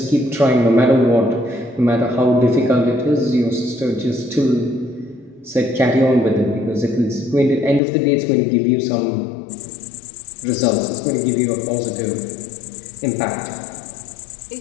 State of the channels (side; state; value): right; drops out; at 7.8 s